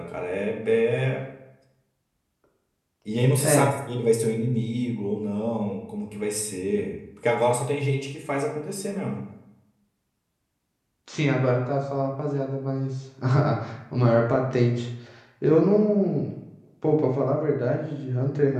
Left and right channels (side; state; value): both; identical; correlation 1.00